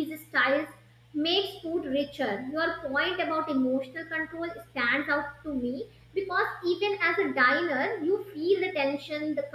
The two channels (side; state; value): both; identical; correlation 1.00